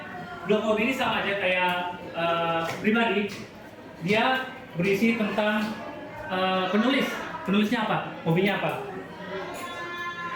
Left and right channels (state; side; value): identical; both; correlation 1.00